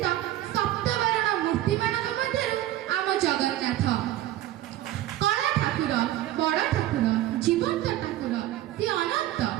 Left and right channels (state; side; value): quieter; left; 14.1 dB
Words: सप्तवर्ण मूर्ति मानक मध्यरु आम जगन्नाथ। कला ठाकुर, बड़ ठाकुर, जीवंत ठाकुर, सी अनंत।